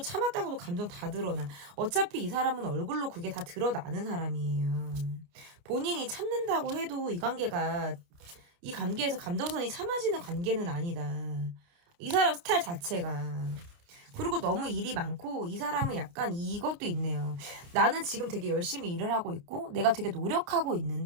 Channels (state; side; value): late; left; 29 ms